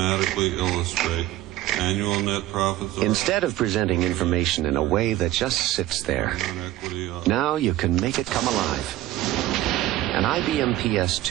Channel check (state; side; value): quieter; left; 15.1 dB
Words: illustrate, annual net profits are... Instead of presenting information in a way that just sits there, now you can make it come alive. An IBM